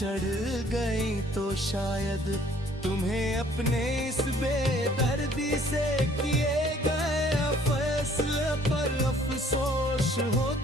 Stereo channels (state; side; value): normal; both; correlation 0.59